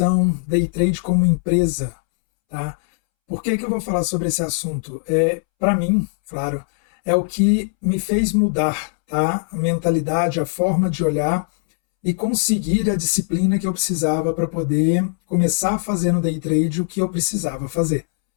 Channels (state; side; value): silent; right; 66 dB below the other